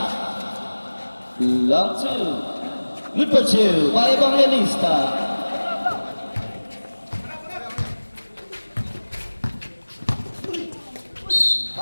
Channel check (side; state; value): both; inverted; correlation -1.00